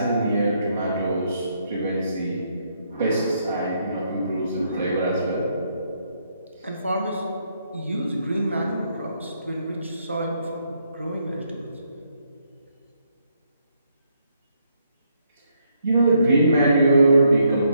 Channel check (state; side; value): inverted; both; correlation -0.75